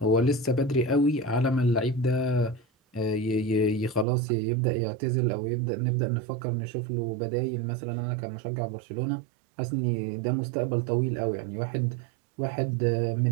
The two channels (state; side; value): drops out; left; at 4.0 s